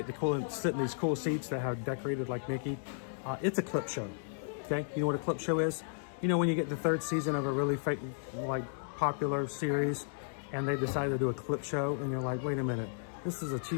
to sit in these cool seats that have decorated like Mickey. It's a clip show. Okay, you know what a clip show is? You know when you get the third season of a really popular series, and they decide to do a clip show, and you're like, wait a minute, this is a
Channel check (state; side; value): silent; right; digital silence